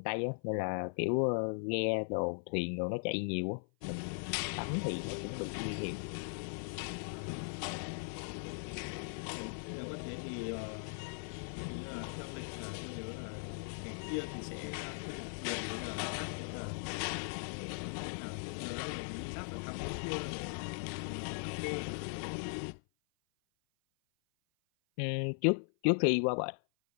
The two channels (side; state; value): right; silent; 52 dB below the other